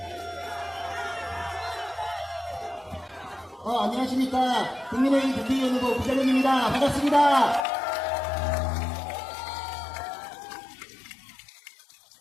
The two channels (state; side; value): drops out; right; at 7.6 s